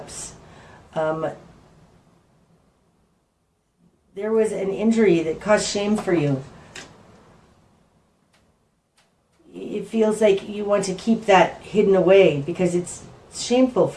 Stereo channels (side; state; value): both; identical; correlation 1.00